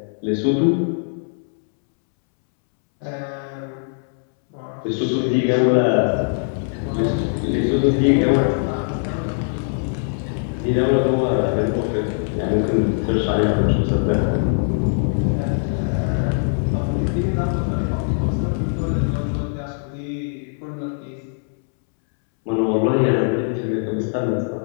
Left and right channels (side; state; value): right; silent; 65 dB below the other